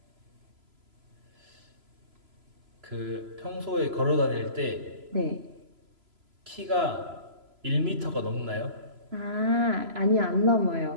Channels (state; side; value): late; left; 3.0 ms